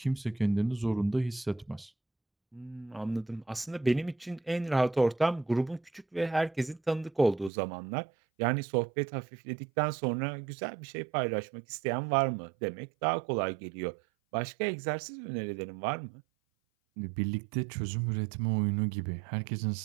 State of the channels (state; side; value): drops out; left; at 7.5 s